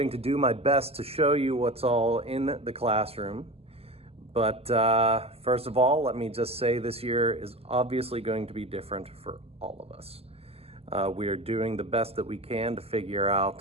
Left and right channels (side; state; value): left; late; 0.29 ms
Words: to do my best to show you what's all in the classroom. But first of all, let me just say this year is obviously going to be different for all of us. We are doing the best that we can to figure